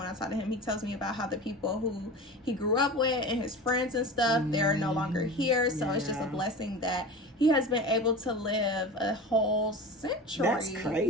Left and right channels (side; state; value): both; normal; correlation 0.32